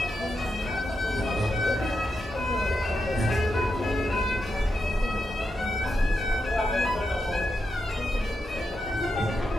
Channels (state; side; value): normal; both; correlation 0.86